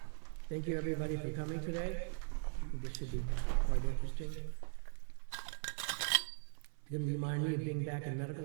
Thank you, everybody, for coming today. This should be quite interesting. Didn't remind me of being back in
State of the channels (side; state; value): left; silent; 51 dB below the other